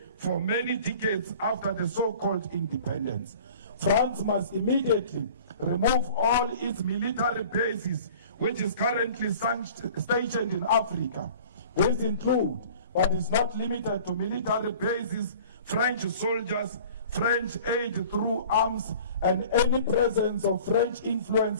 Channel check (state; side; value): inverted; both; correlation -0.46